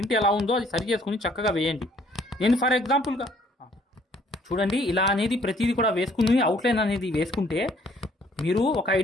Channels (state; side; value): normal; both; correlation 0.62